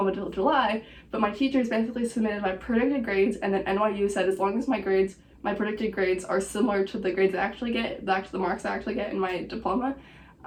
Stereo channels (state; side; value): identical; both; correlation 1.00